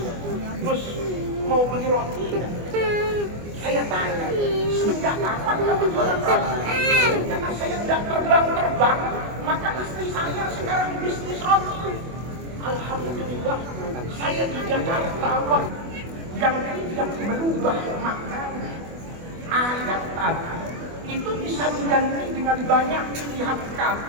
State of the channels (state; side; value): late; left; 24 ms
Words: Gus, mau beli roti enggak? Saya tanya, semenjak kapan kamu jualan roti? Karena saya tidak terbang, maka istri saya sekarang bisnis roti. Alhamdulillah, saya di Jakarta yang tidak merubah maknanya. Ayat tadi itu bisa diganti dengan banyak pilihan